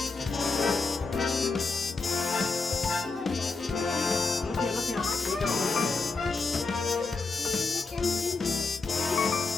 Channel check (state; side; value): quieter; right; 4.1 dB